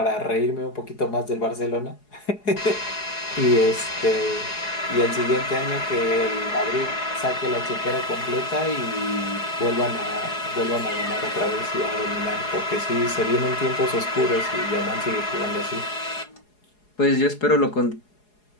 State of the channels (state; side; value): late; right; 4.8 ms